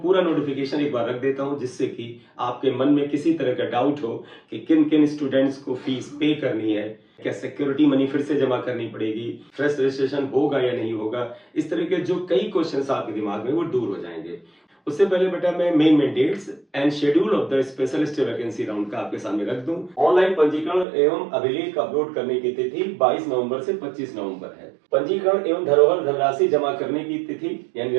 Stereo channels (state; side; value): drops out; left; at 20.9 s